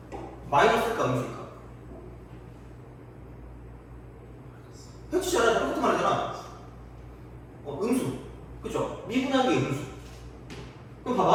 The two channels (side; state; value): both; identical; correlation 1.00